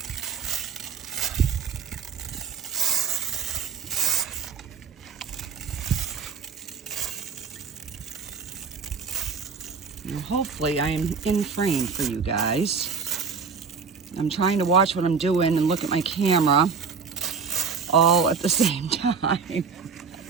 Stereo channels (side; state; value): left; quieter; 5.6 dB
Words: hopefully I am in frame for you guys. I'm trying to watch what I'm doing and look at my camera all at the same time.